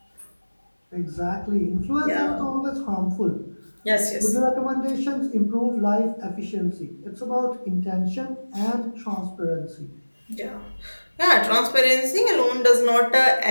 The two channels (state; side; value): inverted; both; correlation -1.00